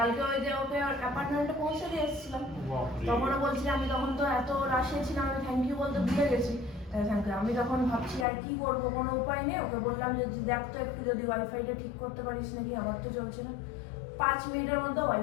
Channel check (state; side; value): drops out; right; at 8.2 s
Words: ওই যে ওকে অ্যাপার্টমেন্টে পৌঁছে দিয়ে এসেছিলাম, তখনও বলছি আমি তখন তো এত রাশে ছিলাম, আমি থ্যাংক ইউ বলতে ভুলে গেছি। আমি তখন ভাবছি আর কি করবো, কোনো উপায় নেই। ওকে বললাম যে দেখ তো একটু যদি ওয়াইফাইটা ঠিক করতে পারিস নাকি, আমার তো চলছে না। 5 মিনিটের মধ্যে